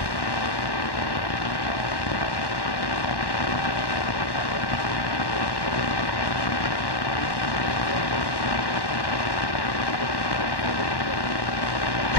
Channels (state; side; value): late; right; 1.1 ms